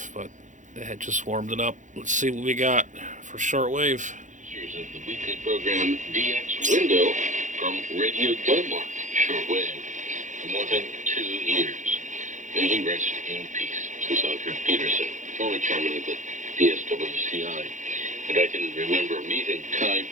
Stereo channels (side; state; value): left; late; 0.36 ms